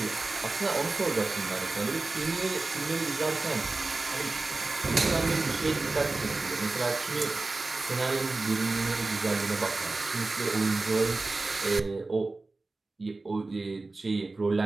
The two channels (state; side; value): quieter; left; 3.4 dB